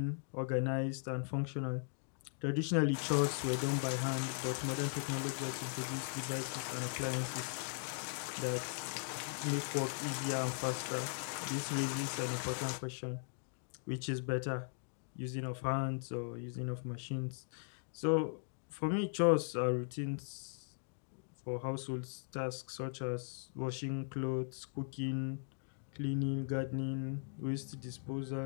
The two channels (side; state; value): right; silent; digital silence